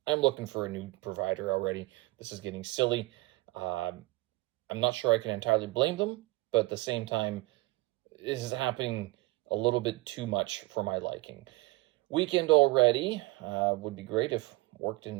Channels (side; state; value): left; quieter; 21.8 dB